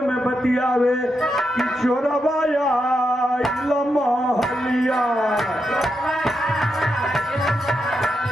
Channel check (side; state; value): both; normal; correlation 0.84